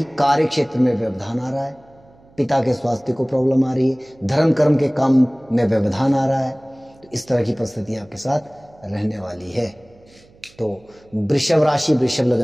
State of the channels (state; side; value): noise; right; hum, 28 dB below the sound